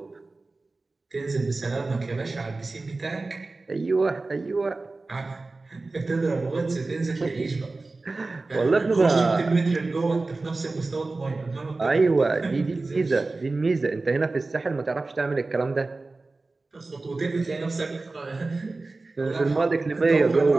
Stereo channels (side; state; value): left; quieter; 3.4 dB